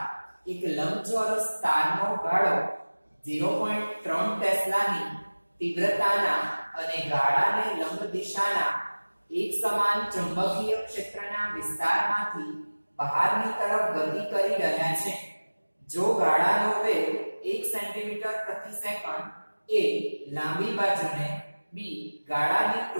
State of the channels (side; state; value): both; inverted; correlation -1.00